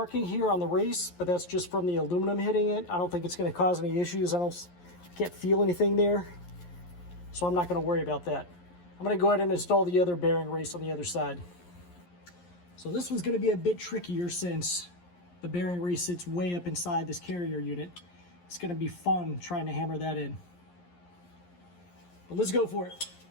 here on the race, but that's just from the aluminum hitting it. I don't think it's going to cause any issues. I can't feel anything there, so I'm not going to worry about that. I'm going to go ahead and install the other bearing race on the other side. So this one's going to be a bit trickier since the bearing race sits way up inside this carrier unit. It's going to be fun trying to hammer that in. But let's go for it.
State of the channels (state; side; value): late; right; 11 ms